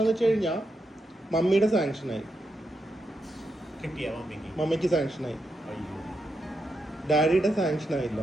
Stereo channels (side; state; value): both; normal; correlation 0.84